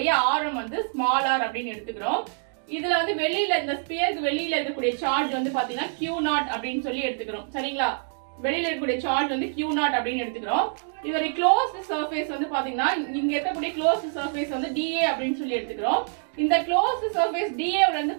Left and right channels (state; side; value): silent; left; digital silence